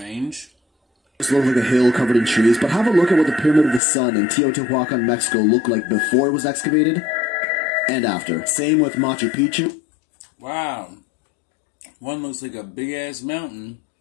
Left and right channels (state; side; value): drops out; right; at 3.8 s